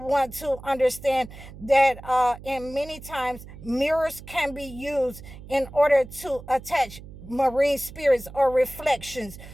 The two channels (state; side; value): noise; right; hum, 16 dB below the sound